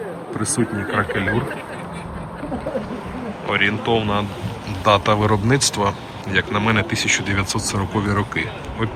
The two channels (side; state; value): both; identical; correlation 1.00